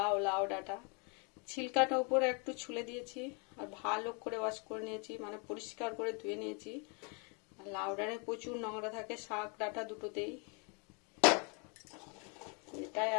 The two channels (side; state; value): right; quieter; 34.7 dB